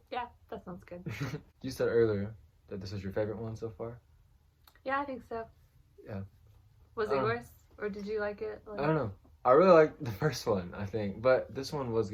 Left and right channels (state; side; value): identical; both; correlation 1.00